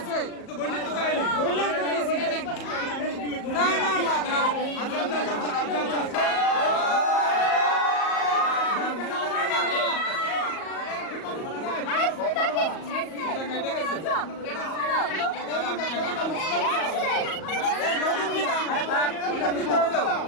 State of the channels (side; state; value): right; late; 38 ms